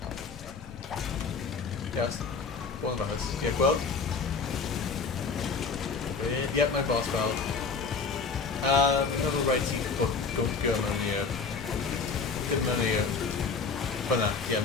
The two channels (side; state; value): right; quieter; 4.9 dB